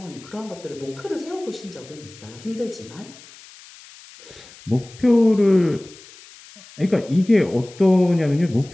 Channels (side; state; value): left; noise; hiss, 21 dB below the sound